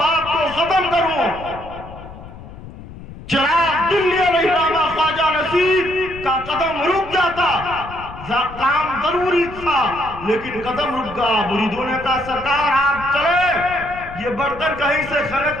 کو ختم کروں۔ چراغ دلی علیہ السلام خواجہ نصیر کا قدم رک جاتا، کام ضروری تھا لیکن قدم رک گیا۔ مریدوں نے کہا سرکار آپ چلے، یہ برتن کہیں سے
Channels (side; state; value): left; noise; rumble, 15 dB below the sound